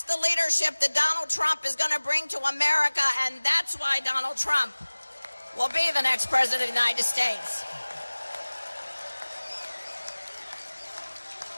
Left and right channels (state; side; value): inverted; both; correlation -1.00